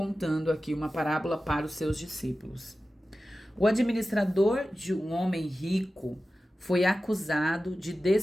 aqui uma parábola para os seus discípulos. O administrador de um homem rico foi acusado de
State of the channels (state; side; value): normal; both; correlation 0.94